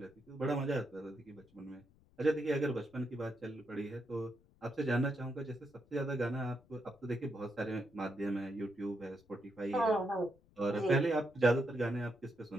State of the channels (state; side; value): noise; left; rumble, 29 dB below the sound